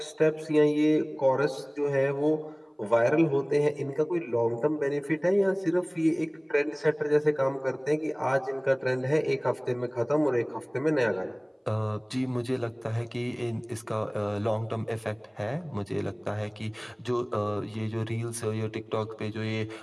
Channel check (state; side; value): identical; both; correlation 1.00